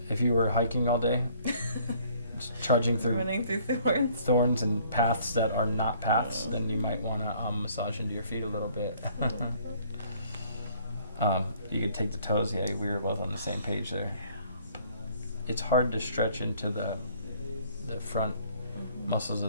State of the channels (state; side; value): inverted; both; correlation -0.59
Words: If you were hiking all day, just trudging through Running through thorns and paths that are not paths, then you might want to massage into your feet a little bit. You could take the toes. Yeah, we were both on the same page there. It's hard to stretch into the front muscles